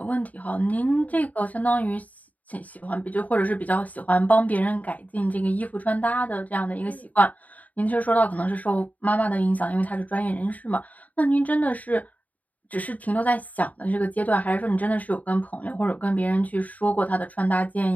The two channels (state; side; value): late; right; 0.073 ms